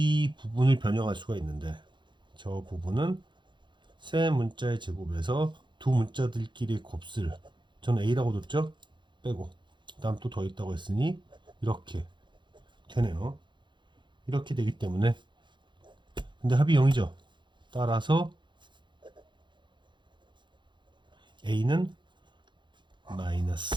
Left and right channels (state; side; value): late; left; 0.23 ms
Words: 부분을 변형할 수가 있는데 저 부분은 세 문자의 제곱에서 두 문자들끼리의 곱슬 저는 A라고 뒀죠. 빼고 그 다음 또 더했다고 했으니 이렇게 되네요. 이렇게 되기 때문에 근데 합이 0이죠. 따라서 A는